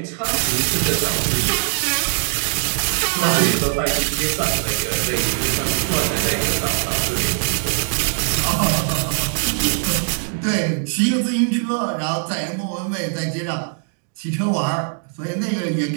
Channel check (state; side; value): silent; left; 64 dB below the other